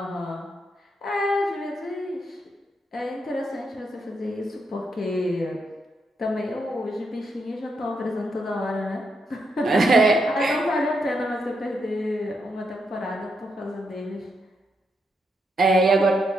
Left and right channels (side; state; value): both; normal; correlation 0.80